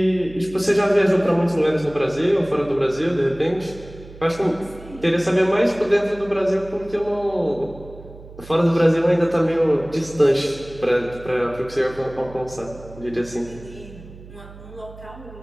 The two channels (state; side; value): noise; right; hum, 18 dB below the sound